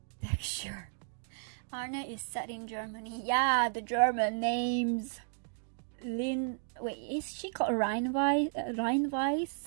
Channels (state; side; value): silent; left; digital silence